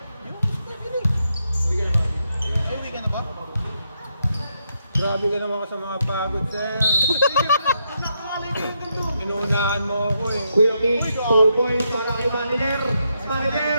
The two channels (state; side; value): inverted; both; correlation -0.80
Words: Grabe ka naman sa mga pagod, sir. Inuunahan mo ako eh. Kuya Ming, 4 points para kay Manager.